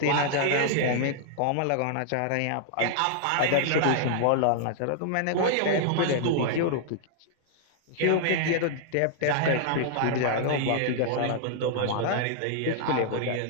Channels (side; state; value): both; different; correlation -0.01